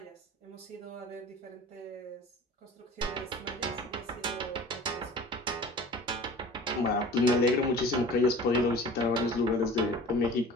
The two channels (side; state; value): both; normal; correlation 0.42